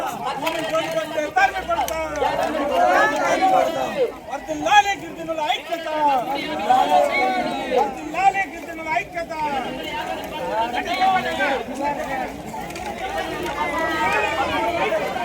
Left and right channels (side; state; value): both; identical; correlation 1.00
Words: వర్ధిల్లాలి గిరిజనుల ఐక్యత, వర్ధిల్లాలి గిరిజనుల ఐక్యత.